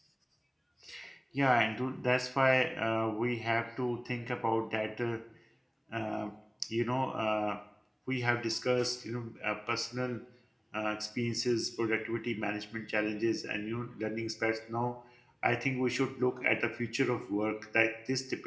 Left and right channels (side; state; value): both; identical; correlation 1.00